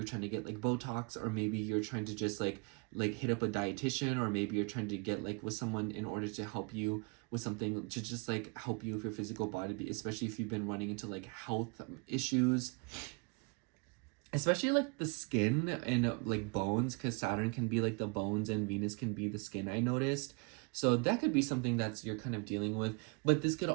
trying to get like Botox, or maybe you're trying to just like hit up a dietitian, or maybe you're trying to get like with someone in order to help you with something to just like help you with your physical body, especially if you've been running into like health issues, especially like the skin and like bones, because Saturn can be like the bones and Venus can be the skin, I noticed. So that could be something that's you're kind of dealing with. But this could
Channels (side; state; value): left; quieter; 32.3 dB